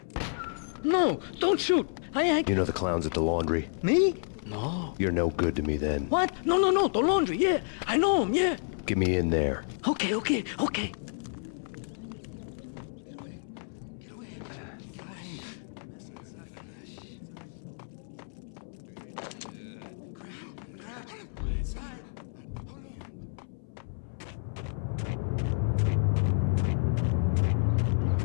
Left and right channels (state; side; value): silent; right; 58 dB below the other